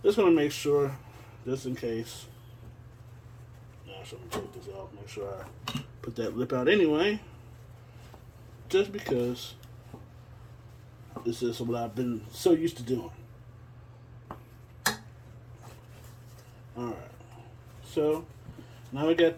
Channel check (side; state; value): both; identical; correlation 1.00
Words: just going to make sure, just in case. Actually, let me take this off. Make sure I put that lip out anyway. Just because this is what I've been so used to doing. Alright. So, now we got